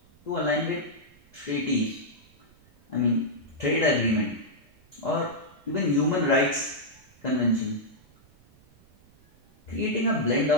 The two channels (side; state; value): right; noise; rumble, 30 dB below the sound